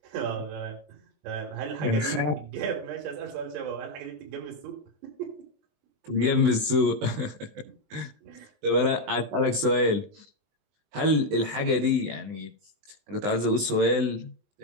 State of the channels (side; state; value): left; late; 20 ms